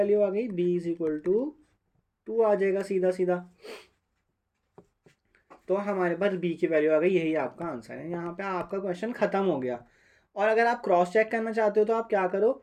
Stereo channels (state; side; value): identical; both; correlation 1.00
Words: आ गई? b इज इक्वल टू 2 आ जाएगा सीधा सीधा। तो हमारे पास b की वैल्यू आ गई, यही आपका आंसर है। यहाँ पे आपका क्वेश्चन ख़त्म हो गया। और अगर आप क्रॉस चेक करना चाहते हो तो आप क्या करो?